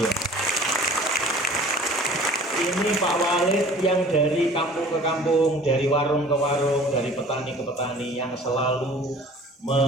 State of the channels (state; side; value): normal; both; correlation 0.47